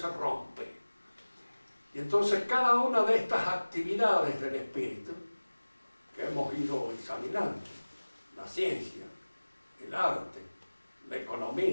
rompe. Y entonces cada una de estas actividades del espíritu que hemos ido examinando, la ciencia, el arte, la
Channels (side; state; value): both; inverted; correlation -1.00